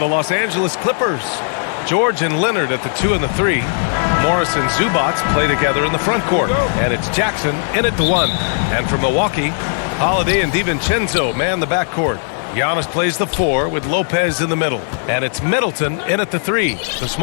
Los Angeles Clippers. George and Leonard at the 2 and the 3. Morris and Zubac play together in the front court. And it's Jackson in at the 1. And for Milwaukee, Holiday and DiVincenzo man the backcourt. Giannis plays the 4 with Lopez in the middle. And it's Middleton in at the 3, the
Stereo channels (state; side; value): silent; right; digital silence